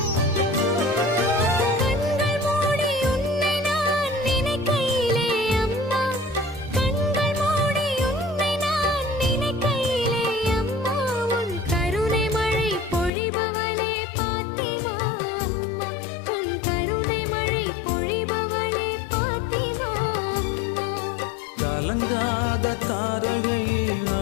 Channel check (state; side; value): drops out; right; at 13.1 s